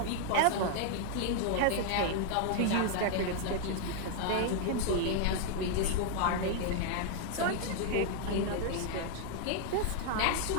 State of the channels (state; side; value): different; both; correlation 0.00